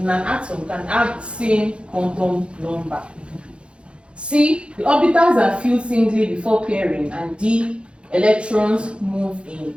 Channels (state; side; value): late; left; 0.057 ms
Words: an atom can have the same quantum number. C, the orbitals are filled singly before pairing. And D, electrons move